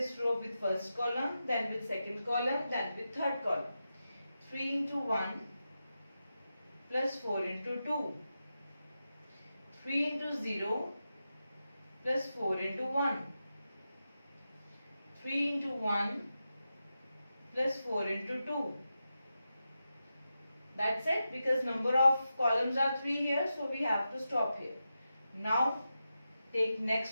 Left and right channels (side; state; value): both; inverted; correlation -0.90